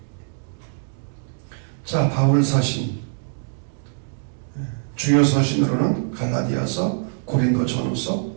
자, 바울 서신. 주요 서신으로는 갈라디아서, 고린도 전후서,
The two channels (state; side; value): silent; left; digital silence